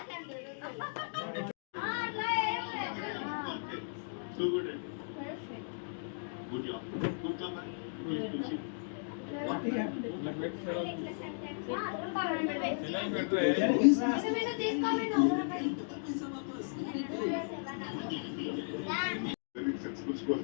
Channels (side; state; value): right; silent; digital silence